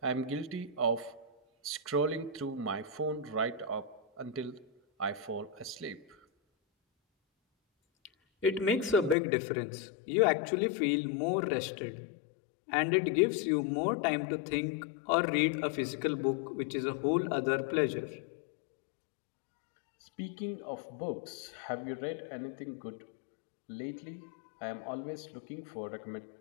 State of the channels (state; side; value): drops out; right; at 9.2 s